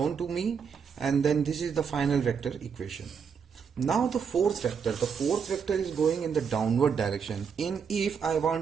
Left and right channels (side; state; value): left; quieter; 6.5 dB